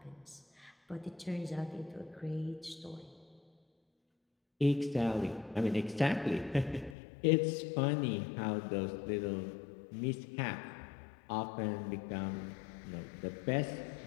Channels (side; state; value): right; drops out; at 7.0 s